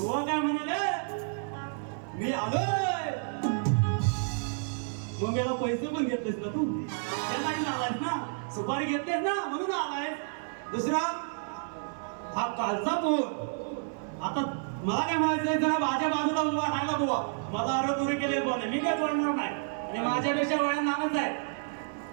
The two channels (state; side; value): silent; left; 58 dB below the other